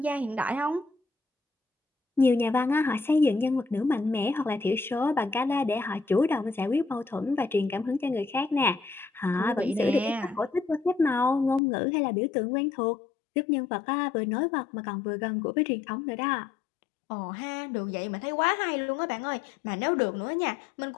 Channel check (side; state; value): right; drops out; at 11.6 s